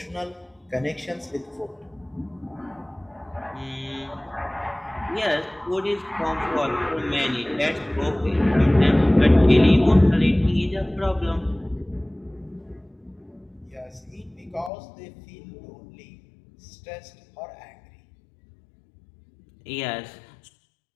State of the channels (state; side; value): drops out; right; at 14.7 s